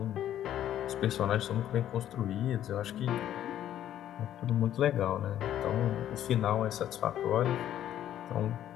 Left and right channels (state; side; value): quieter; right; 11.4 dB